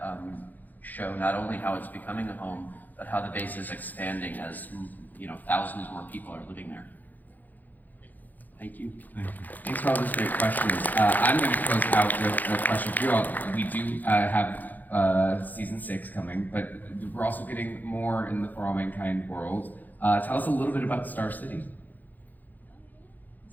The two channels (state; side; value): late; right; 0.084 ms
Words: show not only how it's becoming a home, but how the base is expanding as thousands more people are living there. Thank you. Thanks for all those great questions. I'm going to close out with a question for you all. We do have season 6 coming, but we're also getting more in the For All Mankind world. Tell us a little bit about Star City.